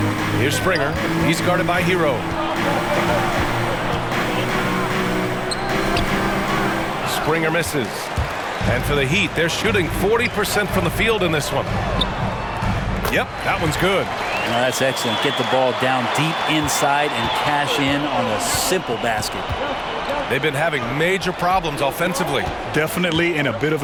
Here's Springer. He's guarded by Hero. Springer misses. And for the Heat, they're shooting 40% from the field in this one. Yep, that one's good. No, that's excellent. Get the ball down deep inside and cash in on a simple basket. They've been having major problems offensively. Definitely in a bit of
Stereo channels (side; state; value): both; identical; correlation 1.00